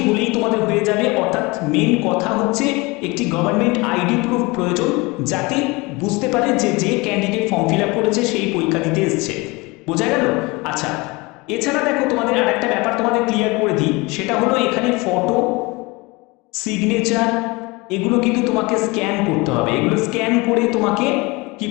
হলেই তোমাদের হয়ে যাবে। অর্থাৎ মেন কথা হচ্ছে একটি গভর্নমেন্ট আইডি প্রুফ প্রয়োজন, যাতে বুঝতে পারে যে যে ক্যান্ডিডেট ফর্ম ফিল আপ করেছে সেই পরীক্ষা দিতে এসছে। বোঝা গেল? আচ্ছা, এছাড়া দেখো তোমাদের আর একটা ব্যাপার তোমাদের ক্লিয়ার করে দিই, সেটা হলো এখানে ফটো, সিগনেচার এগুলো কিন্তু তোমাকে স্ক্যান করতে হবে। এগুলো স্ক্যান করে তোমাকে কি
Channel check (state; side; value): quieter; right; 24.7 dB